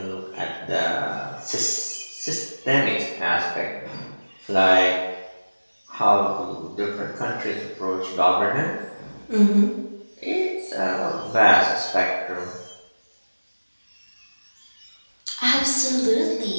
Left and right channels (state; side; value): inverted; both; correlation -1.00